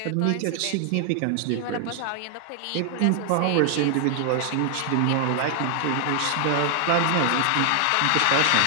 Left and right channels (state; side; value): different; both; correlation 0.00